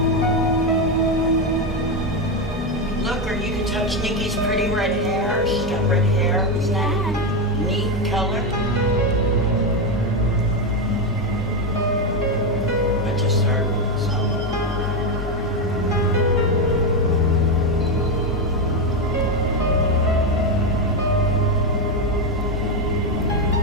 Look, or you can touch Nikki's pretty red hair. She's got red hair. Isn't that a neat color? I just heard some.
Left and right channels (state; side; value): normal; both; correlation 0.09